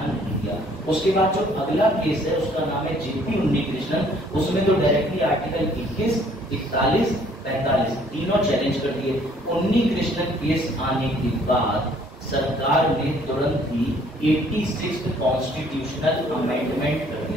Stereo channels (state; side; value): normal; both; correlation 0.60